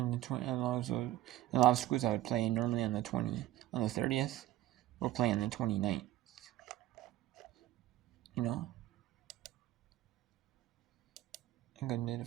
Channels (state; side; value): quieter; left; 14.5 dB